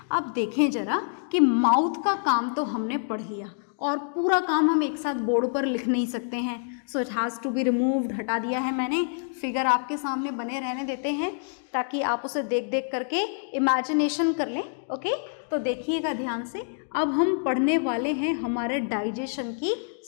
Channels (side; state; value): right; silent; digital silence